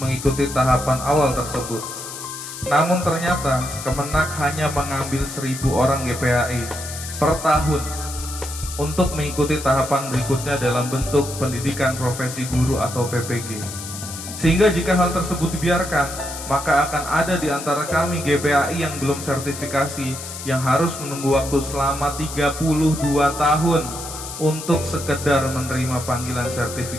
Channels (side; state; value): left; noise; hiss, 10 dB below the sound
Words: mengikuti tahapan awal tersebut. Namun ternyata Kemenak hanya mengambil 1.000 orang GPAI per tahun untuk mengikuti tahapan berikutnya dalam bentuk pendidikan profesi guru atau PPG. Sehingga jika hal tersebut dibiarkan, maka akan ada di antara kami GPAI yang belum sertifikasi yang harus menunggu waktu selama 32 tahun untuk sekedar menerima panggilan